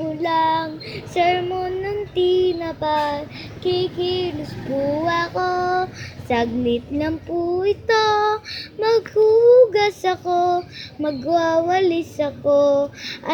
lang. Sermon ng tinapay, kikilos po ako. Saglit lang po ito, maghuhugas ako, magwawalis ako.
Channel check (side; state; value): both; identical; correlation 1.00